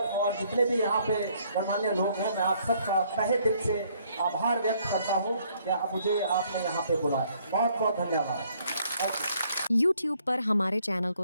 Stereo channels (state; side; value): inverted; both; correlation -0.66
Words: और जितने भी यहाँ पे गणमान्य लोग हैं, मैं आप सबका तहे दिल से आभार व्यक्त करता हूँ कि आप मुझे आपने यहाँ पे बुलाया। बहुत बहुत धन्यवाद। YouTube पर हमारे चैनल